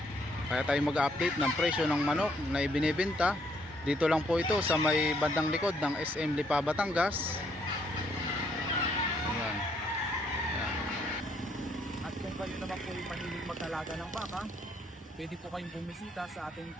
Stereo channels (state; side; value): normal; both; correlation 0.70